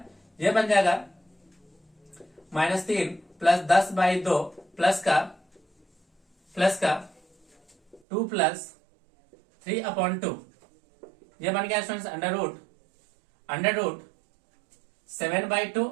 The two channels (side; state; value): left; drops out; at 8.0 s